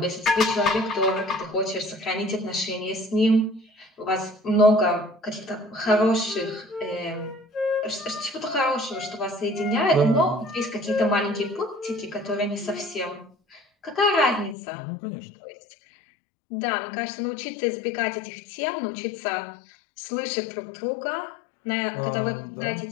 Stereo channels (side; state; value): right; drops out; at 14.6 s